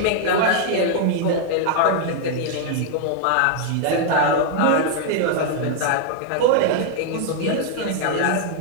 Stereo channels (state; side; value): different; both; correlation 0.00